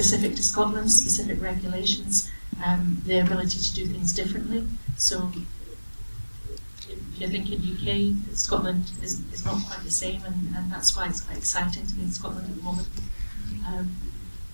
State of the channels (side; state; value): both; inverted; correlation -1.00